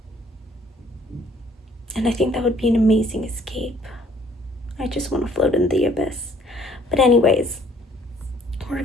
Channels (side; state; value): both; normal; correlation 0.60